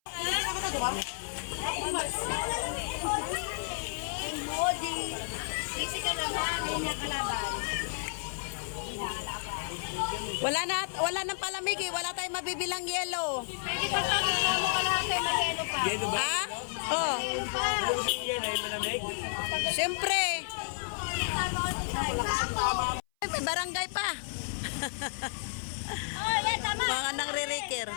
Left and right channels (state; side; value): silent; right; 57 dB below the other